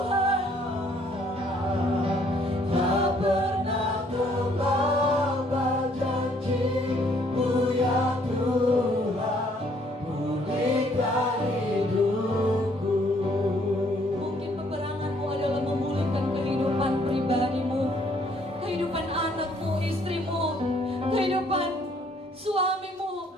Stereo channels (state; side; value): normal; both; correlation 0.64